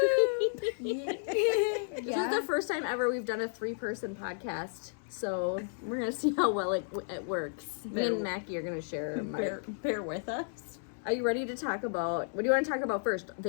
This is the first time ever we've done a 3-person podcast, so we're gonna see how well it works. Me and Mackie are gonna share. Bear with us. Are you ready to talk about, what do you want to talk about first?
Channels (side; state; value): right; silent; digital silence